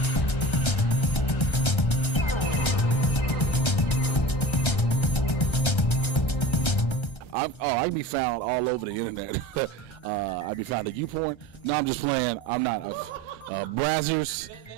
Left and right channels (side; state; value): right; late; 1.3 ms